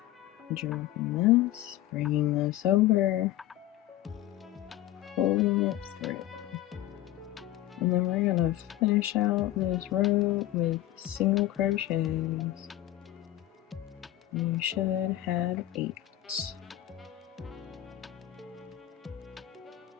Dropping this, bringing this over, pulling it through. And then we're going to finish out this row with single crochets. You should have 8.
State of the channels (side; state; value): right; quieter; 14.3 dB